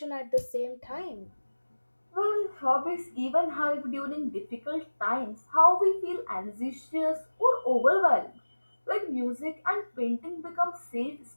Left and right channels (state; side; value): inverted; both; correlation -1.00